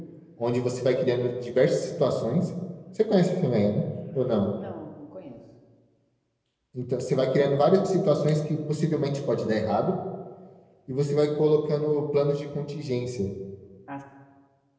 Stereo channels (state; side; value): identical; both; correlation 1.00